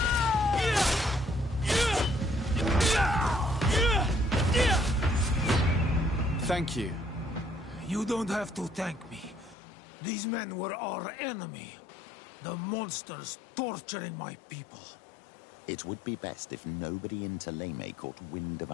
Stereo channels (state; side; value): drops out; right; at 9.6 s